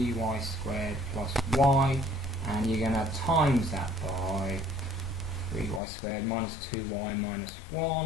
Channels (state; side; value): drops out; right; at 5.8 s